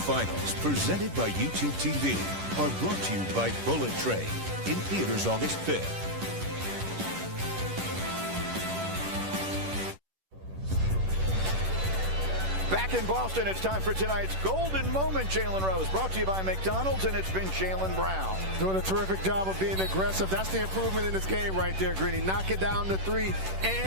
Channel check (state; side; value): late; left; 10 ms